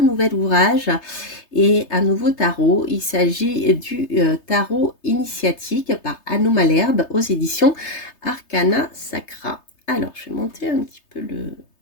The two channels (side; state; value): right; late; 3.3 ms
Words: nouvel ouvrage et un nouveau tarot. Il s'agit du tarot initiatique par Anno Malherbe aux éditions Arcana Sacra. Alors, je vais monter un petit peu